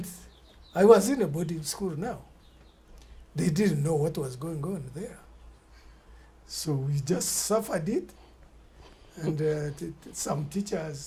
I was in a boarding school now. They didn't know what was going on there. So we just suffered it. And some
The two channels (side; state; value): both; identical; correlation 1.00